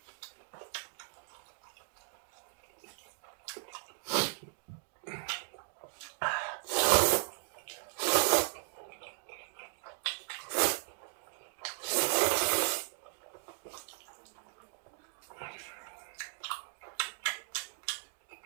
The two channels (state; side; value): silent; left; digital silence